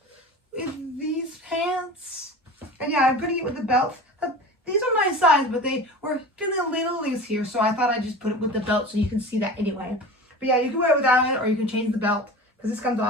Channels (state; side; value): normal; both; correlation 0.35